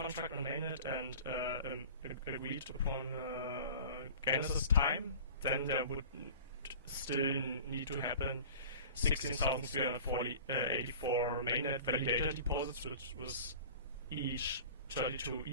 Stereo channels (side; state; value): both; inverted; correlation -0.41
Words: on mainnet and agreed upon genesis time, then there would still need to happen 16,384 mainnet validator deposits, which was each 32